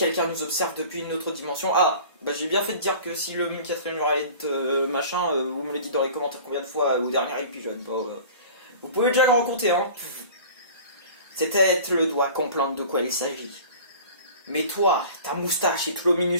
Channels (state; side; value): inverted; both; correlation -0.42